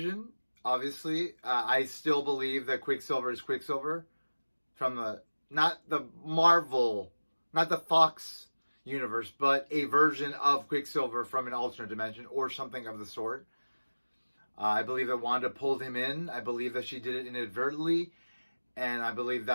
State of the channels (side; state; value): both; inverted; correlation -1.00